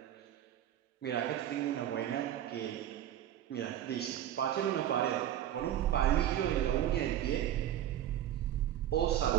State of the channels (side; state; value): left; quieter; 11.5 dB